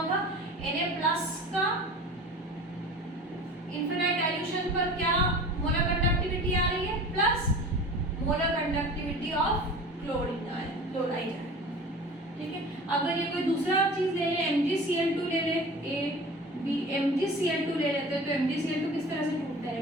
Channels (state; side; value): normal; both; correlation 0.38